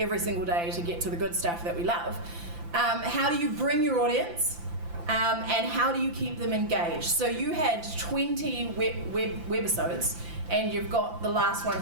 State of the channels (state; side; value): late; left; 5.9 ms